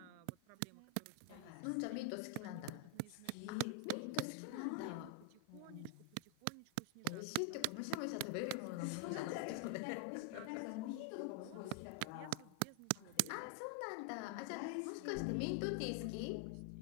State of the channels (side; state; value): both; different; correlation 0.00